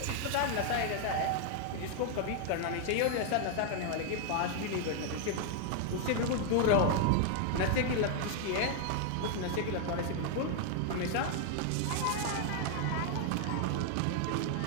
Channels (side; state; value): both; different; correlation 0.00